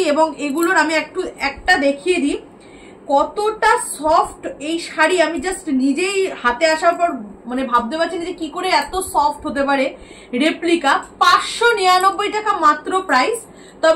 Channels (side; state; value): both; identical; correlation 1.00